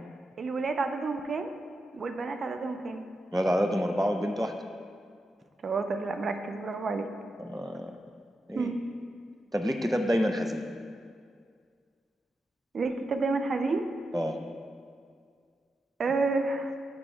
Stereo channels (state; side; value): normal; both; correlation 0.87